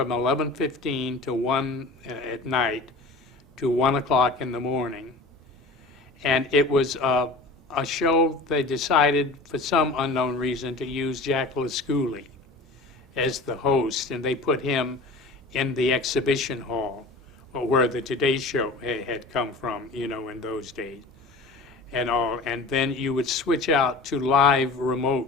11:15 to 1 at night to 1 o'clock in the morning. And it was a show they decided, for some unknown reason, to use Jack LaScoulie as the host, and they put him in the exhibition hall, where the Today Show had come from, in those days. And then you would switch out to live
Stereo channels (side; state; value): right; quieter; 3.2 dB